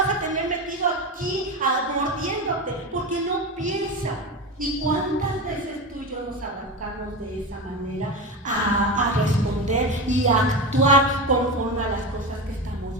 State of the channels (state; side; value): normal; both; correlation 0.21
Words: a tener metido aquí, mordiéndote, porque no piensa. ¿Y cuántas veces tú y yo nos arrancamos de esa manera a responder y a actuar conforme a las cosas que